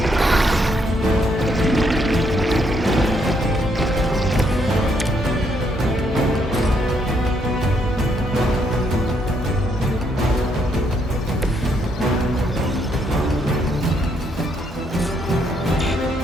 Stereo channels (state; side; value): normal; both; correlation 0.73